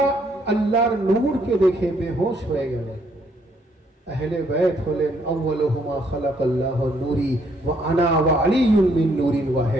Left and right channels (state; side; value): normal; both; correlation 0.69